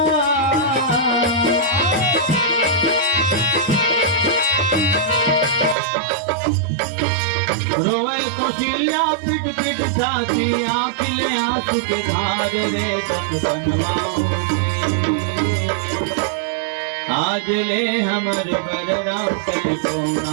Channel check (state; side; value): drops out; left; at 5.8 s